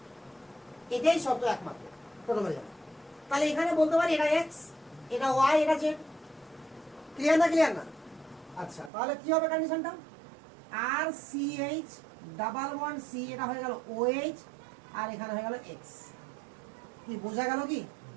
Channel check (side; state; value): left; drops out; at 8.9 s